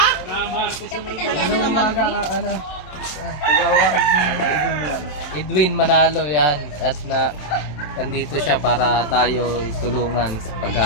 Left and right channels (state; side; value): late; right; 27 ms